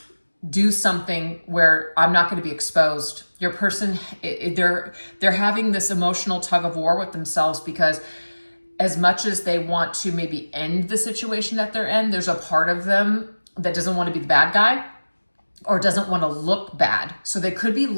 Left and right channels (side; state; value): both; inverted; correlation -1.00